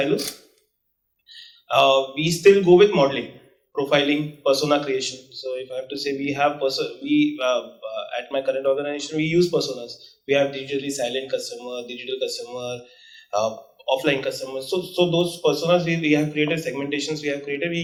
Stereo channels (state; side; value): identical; both; correlation 1.00